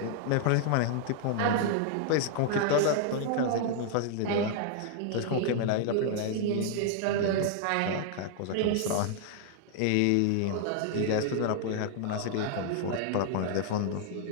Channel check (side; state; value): both; different; correlation 0.00